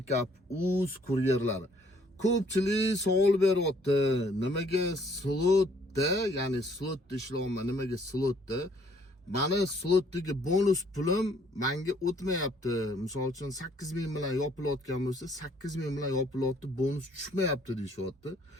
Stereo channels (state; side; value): normal; both; correlation 0.63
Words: uz kuryerlari. Ko'pchilik savol beryapti. Nimaga slotda, ya'ni slotda ishlayapman, nimaga slotda? Mani slotdagi bonus pulim menga o'tmayapti. Misol uchun 8000 bilan yopilayotgan bo'lsa, 8000 bilan yopilyapti, bonus tushmayapti deyishyapti.